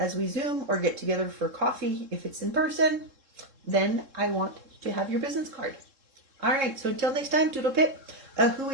we Zoom or get together for coffee, if it's in person, then I want to have your business card. All right, so until next time, toodle pip, a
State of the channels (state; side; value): late; left; 3.7 ms